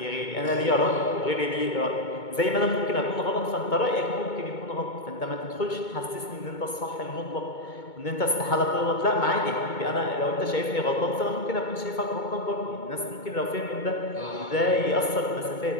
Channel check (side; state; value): right; late; 2.2 ms